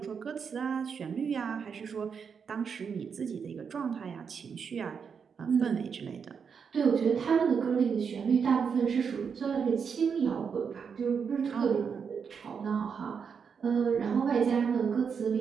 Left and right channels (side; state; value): left; quieter; 6.4 dB